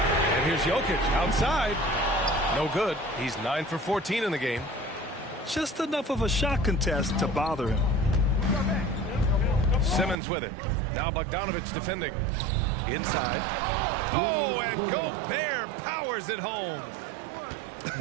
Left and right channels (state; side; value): drops out; left; at 10.2 s